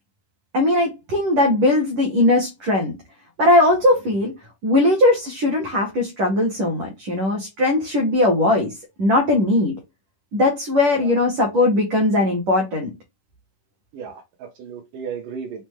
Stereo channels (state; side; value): late; left; 10 ms